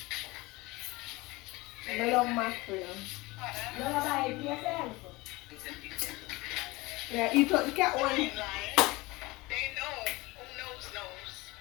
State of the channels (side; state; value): right; quieter; 22.2 dB